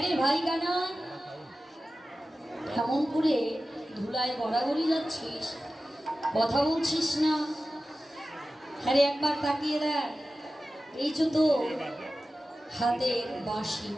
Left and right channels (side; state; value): both; normal; correlation 0.95